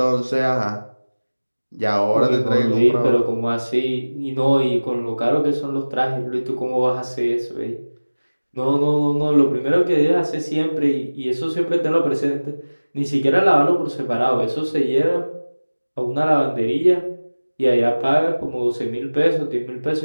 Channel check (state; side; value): inverted; both; correlation -1.00